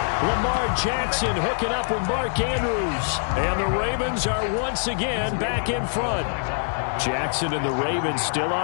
Lamar Jackson hooking up with Mark Andrews. And the Ravens are once again back in front. Jackson and the Ravens still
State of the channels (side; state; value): right; silent; digital silence